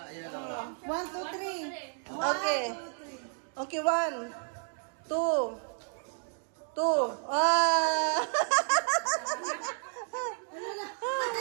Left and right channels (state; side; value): silent; left; 57 dB below the other